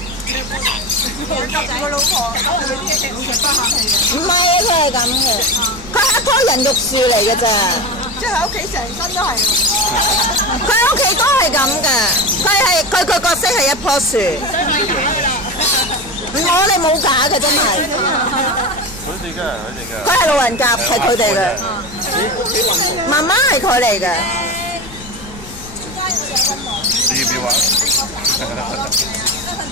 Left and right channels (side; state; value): left; noise; rumble, 17 dB below the sound